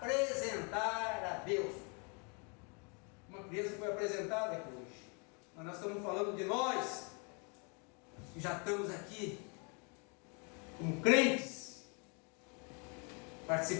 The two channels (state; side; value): quieter; right; 34.6 dB